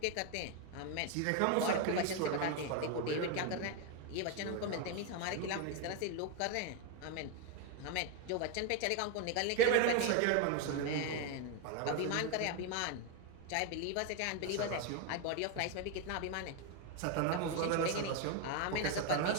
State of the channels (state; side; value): different; both; correlation 0.01